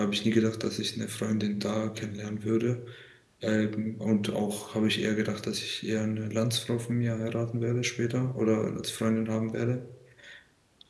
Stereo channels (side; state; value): both; identical; correlation 1.00